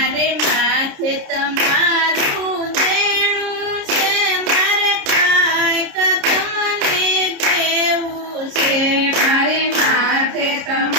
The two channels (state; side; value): late; left; 30 ms